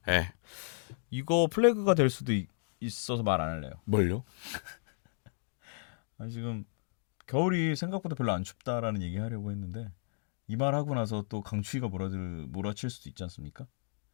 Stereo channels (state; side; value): silent; right; digital silence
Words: 네. 이거 플래그가 될 수도 있어서 말 안 할래요. 뭘요? 아니, 지금 겨울이 생각보다 별로 안 춥다라는 얘기 하려고 했는데 이 말 하고 나서 또 강추위가 몰아칠 수도 있지 않습니까?